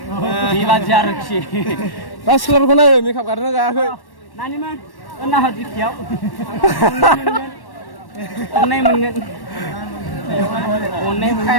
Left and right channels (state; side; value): late; right; 1.1 ms